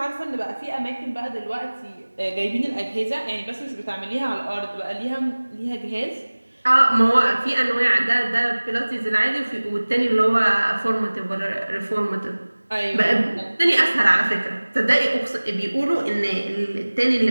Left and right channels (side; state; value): both; inverted; correlation -1.00